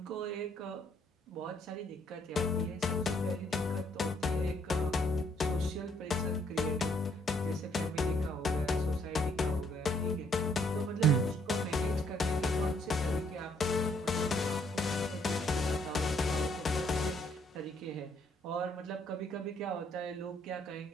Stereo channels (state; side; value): normal; both; correlation 0.69